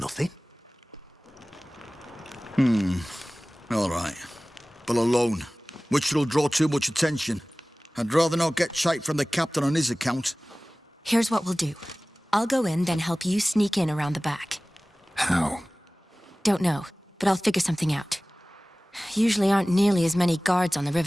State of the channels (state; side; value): normal; both; correlation 0.98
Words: All right. But alone, which will draw too much attention. I'd rather not get shite from the captain on his account. Here's what we'll do. I'll go in, then help you sneak in around the back. How? Don't know, but I'll figure something out. Usually aren't nearly as many guards on the